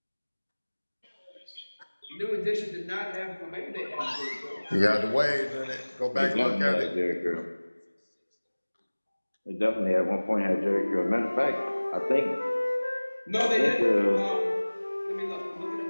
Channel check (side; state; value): both; inverted; correlation -1.00